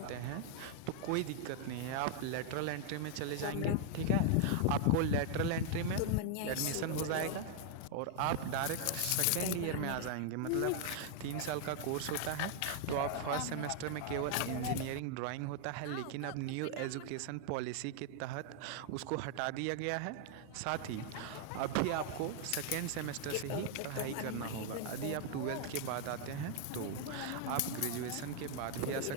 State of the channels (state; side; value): different; both; correlation 0.00